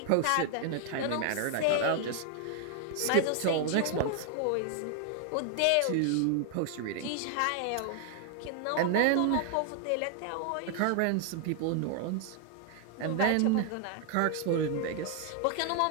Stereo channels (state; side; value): different; both; correlation 0.00